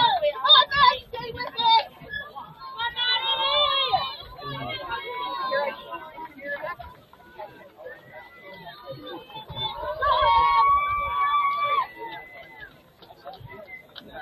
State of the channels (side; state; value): both; identical; correlation 1.00